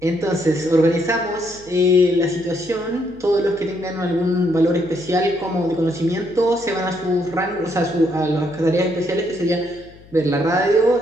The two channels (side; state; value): left; noise; hum, 23 dB below the sound